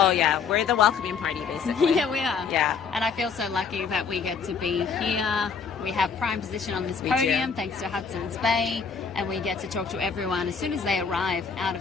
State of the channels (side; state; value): right; quieter; 5.8 dB